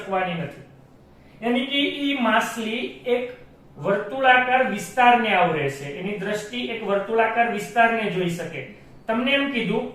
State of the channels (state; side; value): identical; both; correlation 1.00